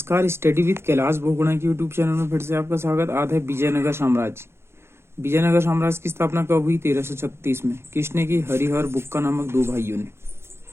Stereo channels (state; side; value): late; left; 0.12 ms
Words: study with Kailash बोगुणा के YouTube channel में फिर से आपका स्वागत। आज है विजयनगर साम्राज्य। विजयनगर साम्राज्य की स्थापना कब हुई? 1336 में। किसने की? हरिहर बुक्का नामक दो भाइयों ने।